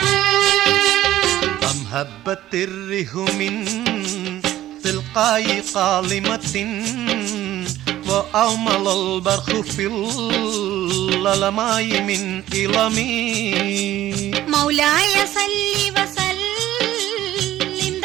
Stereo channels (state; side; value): quieter; left; 14.0 dB